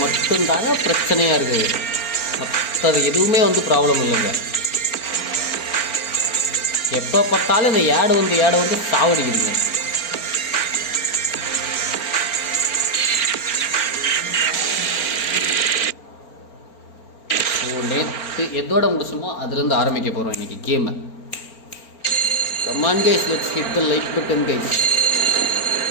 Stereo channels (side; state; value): right; late; 4.4 ms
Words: மட்டும்தாங்க பிரச்சனையாக இருக்குது. மற்றது எதுவுமே வந்து ப்ராப்ளம் இல்லைங்க. எப்போ பார்த்தாலும் இந்த ஆடு வந்து சாவடிக்குதுங்க. நேற்று எதோட முடிச்சுமோ அதுலேருந்து ஆரம்பிக்க போகிறோம் இன்றைக்கி கேமை. Come on guys, let's hit the like button guys.